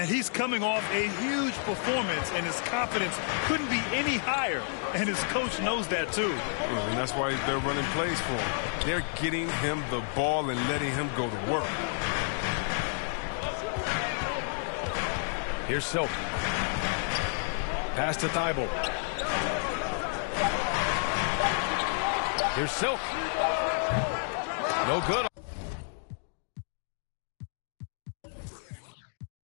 he's coming off a huge performance, and his confidence couldn't be any higher. And his coach knows that, too. And that's why they're running plays for him. They're getting him the ball and letting him go to work. Here's Silk. Pass to Thibault. Here's Silk. No good.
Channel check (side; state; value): right; silent; 58 dB below the other